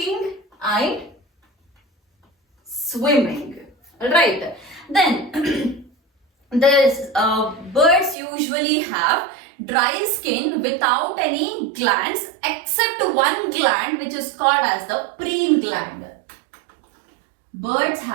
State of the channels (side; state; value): left; drops out; at 8.2 s